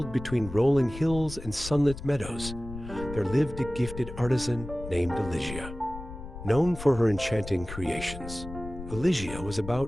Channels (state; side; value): noise; left; rumble, 11 dB below the sound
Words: between rolling hills and sunlit meadows, there lived a gifted artisan named Elysia. Known for her enchanting creations, Elysia was